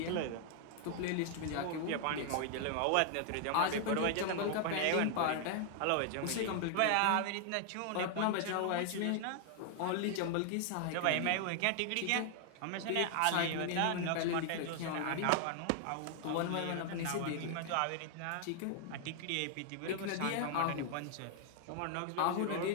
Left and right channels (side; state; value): both; different; correlation 0.00